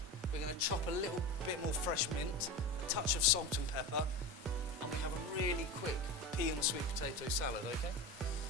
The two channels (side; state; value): both; normal; correlation 0.26